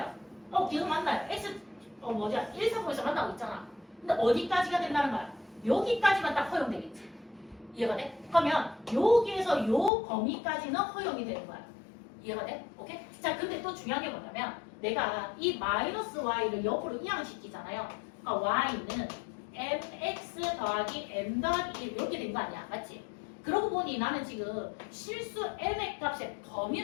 계속 만나요. x 일사분면에서 만나고 있잖아. 근데 어디까지가 된다는 거야? 여기까지만 딱 허용되겠지. 이해가 돼? 그러면 여기에서 요 범위까지는 허용이 되는 거야. 이해가 돼? 오케이? 자, 근데 또 중요한 게 뭐냐면 내가 이 마이너스 y를 옆으로 이항시키잖아요. 그러니까 y는 mx 더하기 m 더하기 1 이렇게 된 거 아니야. 맞지? 그러고 보니 나는 지금 실수 m의 값의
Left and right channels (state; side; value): drops out; right; at 9.9 s